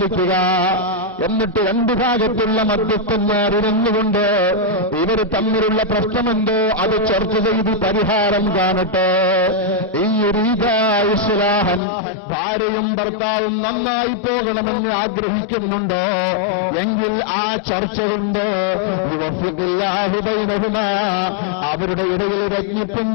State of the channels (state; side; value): drops out; right; at 11.8 s